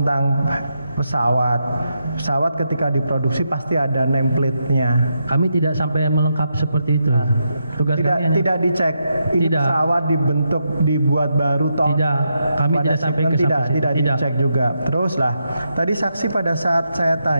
pesawat. Pesawat ketika diproduksi pasti ada nameplate-nya. Kami tidak sampai melengkap seperti itu. Tugas kami tidak dicek. Ini tidak. Pesawat dibuat baru toh. Tidak. Kami tidak sampai ke situ. Tidak dicek juga. Teruslah. Tadi saksi pada saat saya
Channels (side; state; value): both; inverted; correlation -0.83